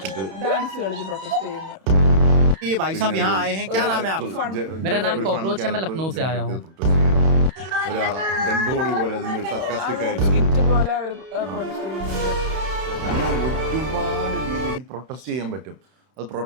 പ്രൊട്ടസ്റ്റ് ചെയ്യുന്നു. ये भाई साहब यहाँ आए हैं, क्या नाम है आपका? मेरा नाम कॉकरोच है, मैं लखनऊ से आया हूँ. അങ്ങനെ ഒരുപാട് രീതിയിൽ പ്രൊട്ടസ്റ്റ് ചെയ്യാൻ പറ്റും. അത്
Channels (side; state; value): left; late; 31 ms